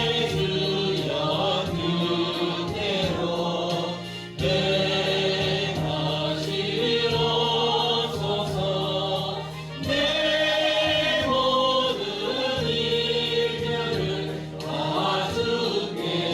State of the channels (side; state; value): both; identical; correlation 1.00